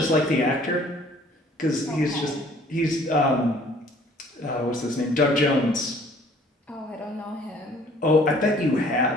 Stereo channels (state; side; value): normal; both; correlation 0.56